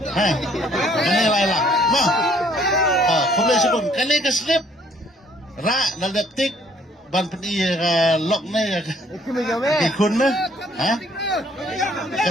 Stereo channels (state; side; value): normal; both; correlation 0.62